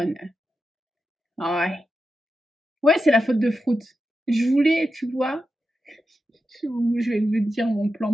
Ah ouais. Ouais, c'est la faute de Fruit. Je voulais, tu vois, je vais vous dire mon plan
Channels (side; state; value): both; normal; correlation 0.89